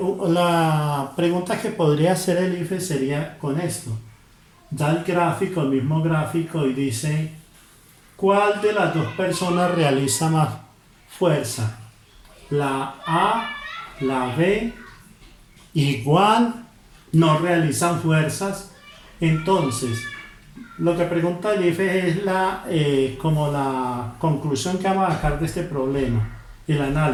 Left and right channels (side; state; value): both; identical; correlation 1.00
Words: pregunta que podría hacer el IFES sería con esto. Da el gráfico, el mismo gráfico, y dice ¿cuál de las dos personas realiza más fuerza? La A, la B, igual no realizan fuerzas. Entonces, lo que pregunta el IFE es como la conclusión que vamos a sacar de este problema, el